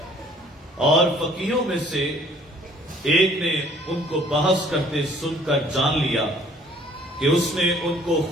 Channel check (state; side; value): normal; both; correlation 0.57